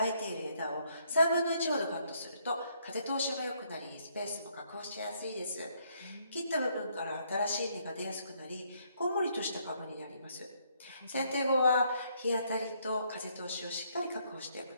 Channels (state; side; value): inverted; both; correlation -0.70